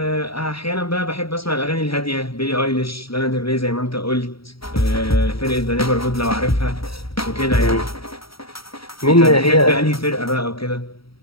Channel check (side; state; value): right; late; 0.75 ms